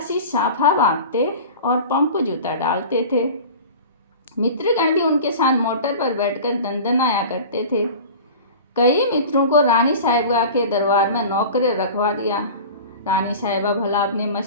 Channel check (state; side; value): inverted; both; correlation -0.36